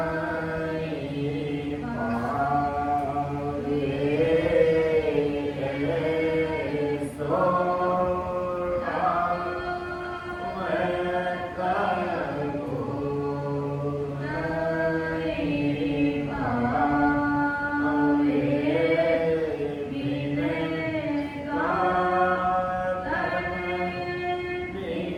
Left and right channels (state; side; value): identical; both; correlation 1.00